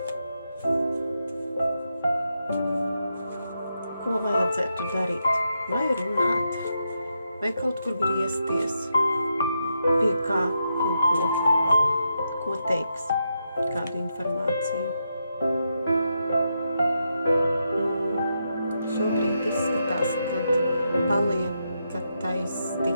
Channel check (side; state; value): both; inverted; correlation -0.83